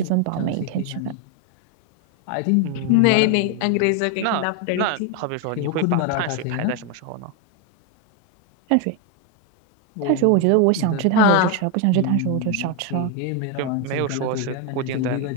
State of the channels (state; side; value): different; both; correlation 0.01